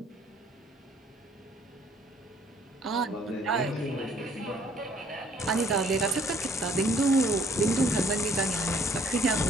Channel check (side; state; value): both; normal; correlation 0.61